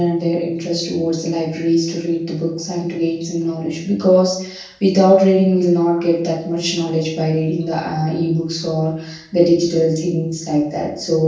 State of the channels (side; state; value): both; identical; correlation 1.00